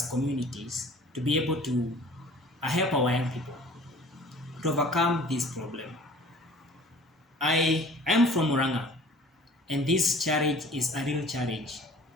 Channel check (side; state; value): both; normal; correlation 0.47